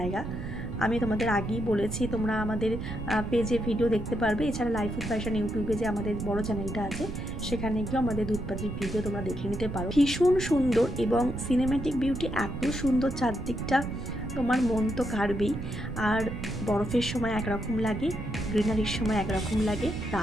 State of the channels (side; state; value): right; noise; rumble, 7 dB below the sound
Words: আমি তোমাদের আগেই বলেছি, তোমরা আমাদের পেজে ভিডিও দেখতে পারবে। এছাড়া লাইফ উইথ ফ্যাশন ইউটিউবে যে আমাদের বড় চ্যানেলটা আছে, সেখানে গিয়েও আমাদের দুধপাত্রির ভিডিও তোমরা দেখে নিতে পারো। ভীষণ সুন্দর এবং সিনেম্যাটিক বিউটি এত সুন্দর, চারদিকটা তোমার মন তো কাড়বেই। আর বরফের সময় একরকম লাগে, গ্রিনারির সময় একরকম লাগে,